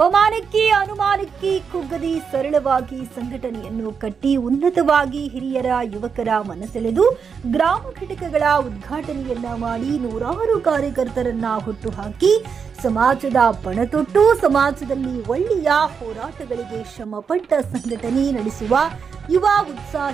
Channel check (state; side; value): quieter; left; 6.2 dB